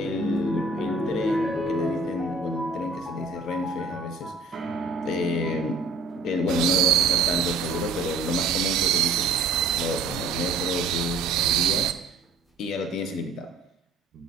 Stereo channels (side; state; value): left; quieter; 3.3 dB